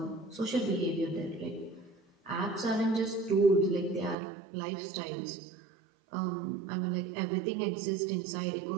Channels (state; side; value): drops out; left; at 4.2 s